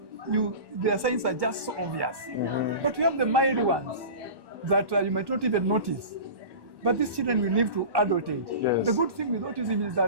their signs are just so obvious. But we have the mild ones that you might not even notice. But these children will live to adult age. Yes. The good thing with autism is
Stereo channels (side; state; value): left; late; 1.1 ms